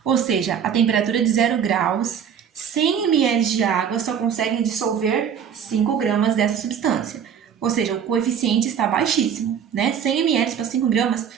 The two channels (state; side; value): quieter; left; 8.0 dB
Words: Ou seja, a temperatura de 0 graus, 100 ml de água só conseguem dissolver 5 gramas dessa substância. Ou seja, o coeficiente está baixíssimo, né? 100 ml para 5 gramas